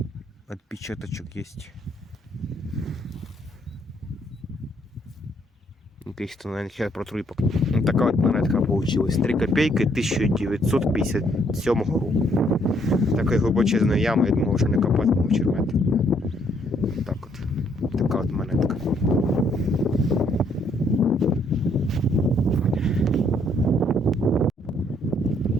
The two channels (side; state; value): both; normal; correlation 0.68